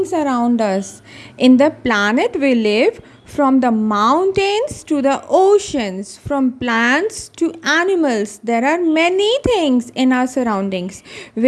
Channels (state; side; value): identical; both; correlation 1.00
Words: around us. In the planet we live, from the mountains to the oceans, from plants to animals, there are many things in our surroundings